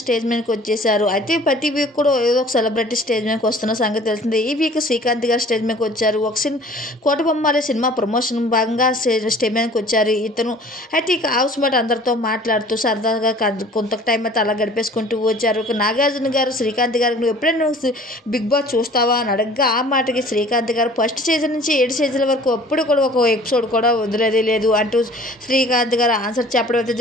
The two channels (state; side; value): normal; both; correlation 0.49